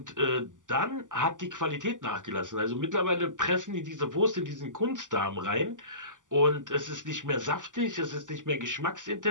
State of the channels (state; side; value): late; left; 0.87 ms